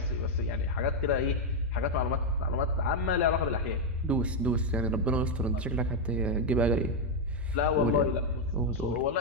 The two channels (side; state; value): both; normal; correlation 0.02